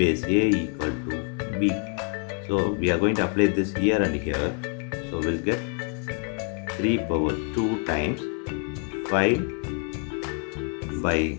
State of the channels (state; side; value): quieter; right; 37.8 dB